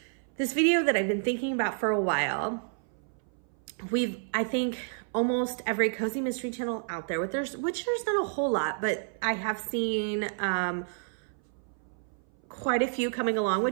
this video that I've been thinking about for a while. I think almost every cozy mystery channel out there, which there's not a whole lot, but I have seen quite a few coming along,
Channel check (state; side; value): silent; left; 58 dB below the other